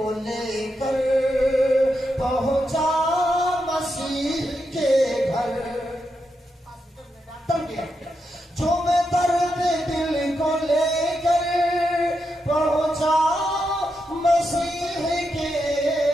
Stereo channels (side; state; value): both; normal; correlation 0.85